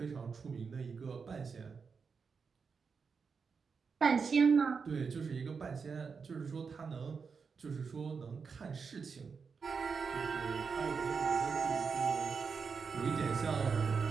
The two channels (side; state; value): left; quieter; 5.5 dB